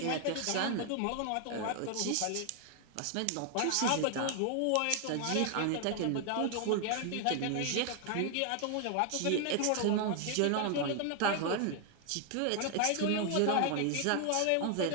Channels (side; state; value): both; different; correlation 0.00